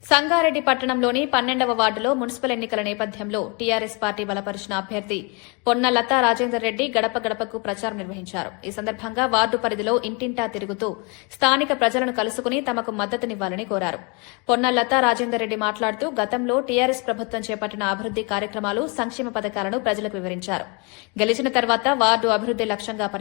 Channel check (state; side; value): quieter; right; 31.8 dB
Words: సంగారెడ్డి పట్టణంలోని 12వ వార్డులో మున్సిపల్ ఎన్నికల నేపథ్యంలో టీఆర్ఎస్ పార్టీ బలపరిచిన అభ్యర్థి పొన్న లతా రాజేందర్ రెడ్డి గడప గడపకు ప్రచారం నిర్వహించారు. ఈ సందర్భంగా వార్డు పరిధిలో ఇంటింటా తిరుగుతూ స్థానిక ప్రజలను కలుసుకుని తమకు మద్దతునివ్వాలని కోరారు. పొన్న లతా రాజేందర్ రెడ్డి మాట్లాడుతూ గతంలో టీఆర్ఎస్ ప్రభుత్వం చేపట్టిన అభివృద్ది కార్యక్రమాలు, సంక్షేమ పథకాలను ప్రజలకు వివరించారు. గెలిచిన తర్వాత వార్డు అభివృద్ది లక్ష్యంగా